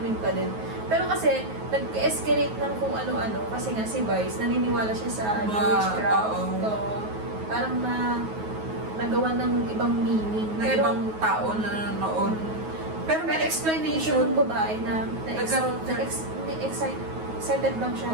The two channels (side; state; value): left; late; 9.4 ms